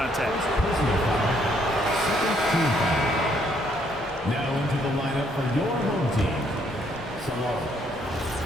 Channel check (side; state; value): both; normal; correlation 0.69